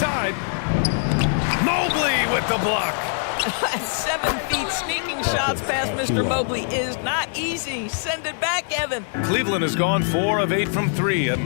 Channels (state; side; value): silent; right; digital silence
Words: Mobley with the block. 7 feet sneaking shots past Mr. Mobley is not easy. Send it back, Evan. Cleveland has gone 4 of 8 from 3, a